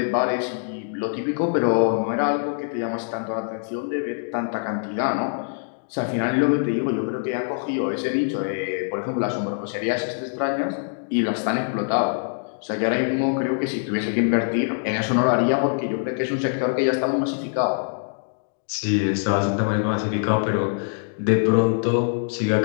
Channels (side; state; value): right; silent; digital silence